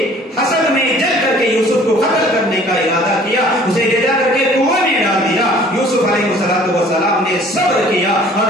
حسد میں جل کر کے یوسف کو قتل کرنے کا ارادہ کیا, اسے لے جا کر کے کنویں میں ڈال دیا. یوسف علیہ السلام نے صبر کیا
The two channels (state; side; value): normal; both; correlation 0.52